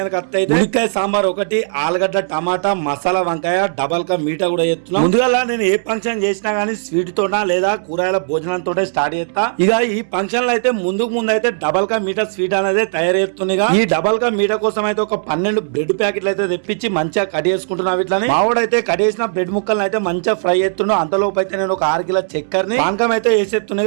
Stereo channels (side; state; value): left; silent; 66 dB below the other